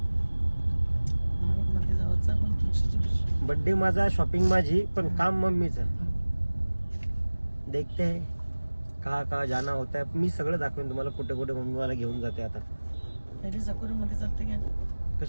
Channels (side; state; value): both; inverted; correlation -1.00